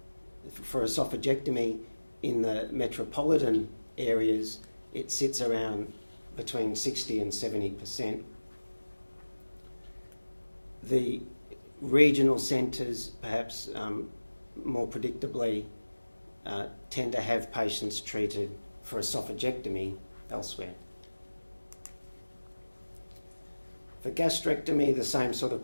esophagectomy in the metropolitan areas, it sits around between 60 and 70%. The regional centres, perhaps more predictably, tend to have patients treated for esophagectomy elsewhere. For gastrectomy, the same sort of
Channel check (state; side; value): inverted; both; correlation -1.00